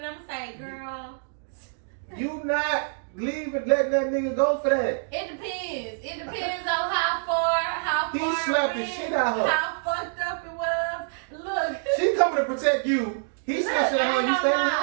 I'm saying, girl. You not leaving, letting that nigga go for that. It depends. It depends on how far He it slapped the went, shit out of her. how fucked up it was. Look. She coming to protect you. He Look, slapped shit out of her. You stay with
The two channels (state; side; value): silent; left; digital silence